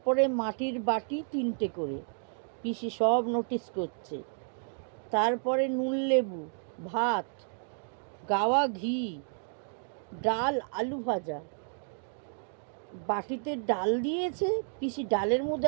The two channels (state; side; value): silent; left; 57 dB below the other